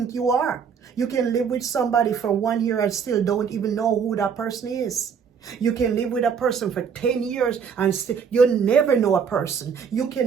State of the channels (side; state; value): left; quieter; 6.7 dB